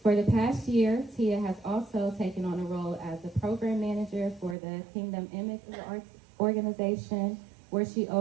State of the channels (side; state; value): left; drops out; at 4.5 s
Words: For the past year, Tia has also taken on a role as a program manager for the Kingdom Image Arts organization, where she